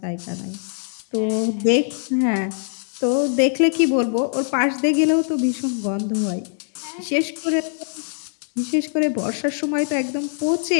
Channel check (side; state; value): right; silent; 63 dB below the other